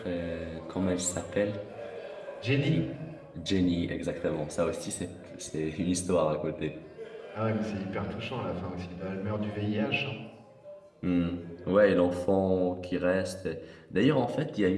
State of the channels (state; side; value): identical; both; correlation 1.00